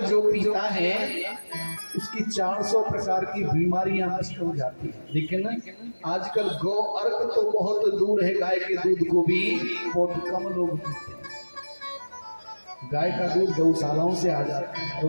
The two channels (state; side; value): inverted; both; correlation -1.00